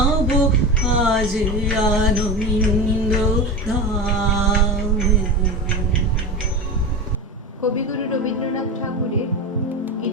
আজ আনন্দ ধামে। কবিগুরু রবীন্দ্রনাথ ঠাকুরের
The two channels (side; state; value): both; normal; correlation 0.25